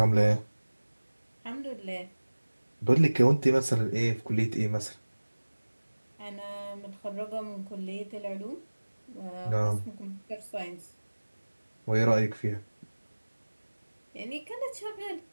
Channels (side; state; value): both; inverted; correlation -1.00